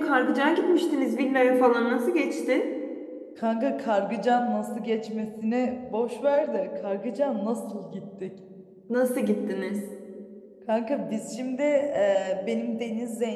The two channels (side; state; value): both; identical; correlation 1.00